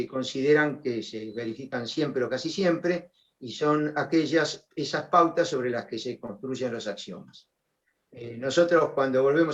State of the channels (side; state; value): both; identical; correlation 1.00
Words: consideran que se verifican siempre o casi siempre, y son esas pautas sobre las que se construyen los axiomas. Nosotros, cuando